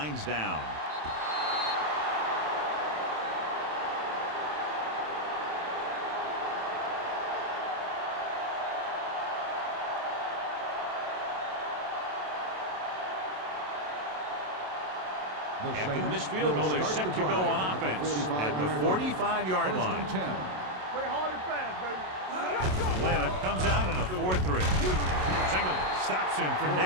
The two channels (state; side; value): late; left; 27 ms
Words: down. After the missed field goal, they're set to go on offense at the 45-yard line. Play hard and fast, baby. Atlanta comes out in a 4-3. Singleton stops him for